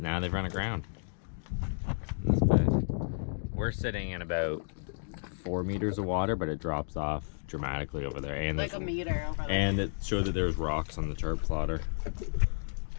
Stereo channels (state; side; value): silent; right; digital silence